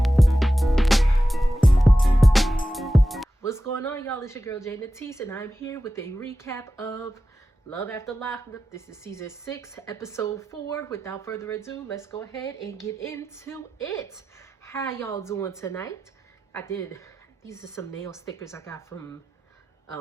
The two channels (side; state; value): both; normal; correlation 0.93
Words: What's going on, y'all? It's your girl Jay Natisse, and I'm here with a recap of Love After Lockup. This is season 6, episode 4. Without further ado, let's go ahead and get into it. How y'all doing tonight? These are some nail stickers I got from